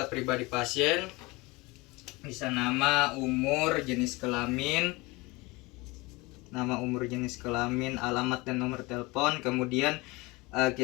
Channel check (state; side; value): quieter; right; 23.8 dB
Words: pribadi pasien, bisa nama, umur, jenis kelamin, alamat dan nomor telepon. Kemudian